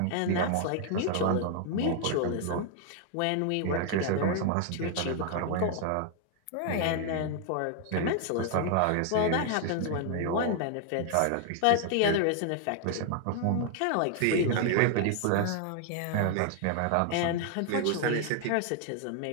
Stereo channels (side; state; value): both; different; correlation 0.00